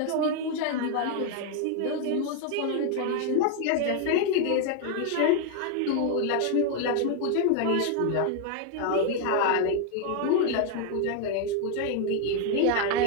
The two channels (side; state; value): both; different; correlation 0.00